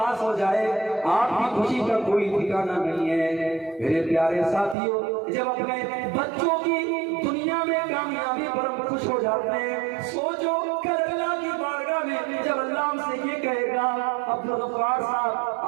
ہو جائے آپ کی خوشی کا کوئی ٹھکانہ نہیں ہے۔ میرے پیارے ساتھیوں جب اپنے بچوں کی دنیا میں کامیابی پر ہم خوش ہو جاتے ہیں، سوچو کل اللہ کی بارگاہ میں جب اللہ ہم سے یہ کہے گا عبدالغفار صاحب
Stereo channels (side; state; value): left; drops out; at 4.8 s